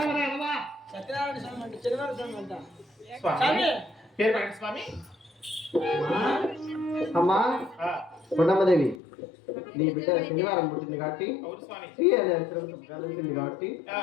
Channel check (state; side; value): drops out; right; at 9.0 s